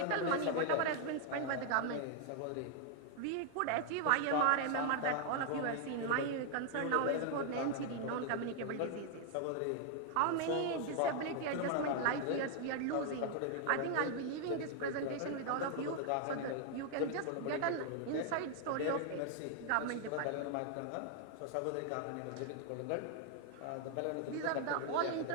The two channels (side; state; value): both; different; correlation 0.00